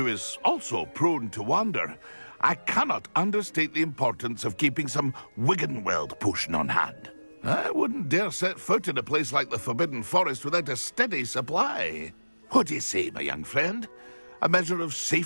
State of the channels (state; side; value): inverted; both; correlation -1.00